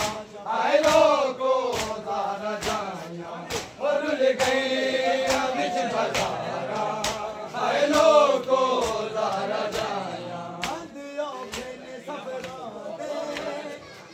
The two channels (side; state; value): both; identical; correlation 1.00